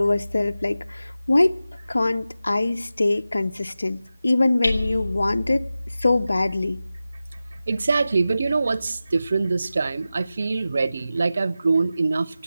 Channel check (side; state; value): both; inverted; correlation -0.94